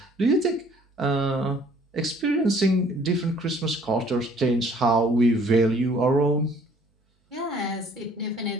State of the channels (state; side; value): normal; both; correlation 0.58